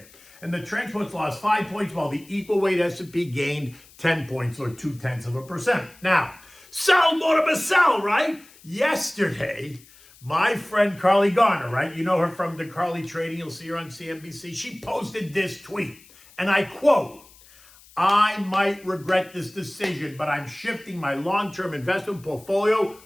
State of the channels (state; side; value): noise; left; hiss, 25 dB below the sound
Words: And the transports lost 5 points, while the equal weight S&P gained 10 points, or 0.2%. Now, sell more to sell, right? Yesterday, my friend Carly Garner, right? You know her from the Carly Trading. You'll see her on CNBC. She posted this tweet, and I quote, "I might regret this decision, but I'm shifting my long-term investment portfolio